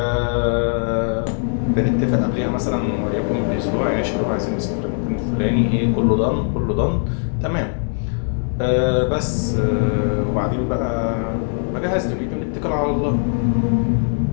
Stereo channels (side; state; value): right; silent; 59 dB below the other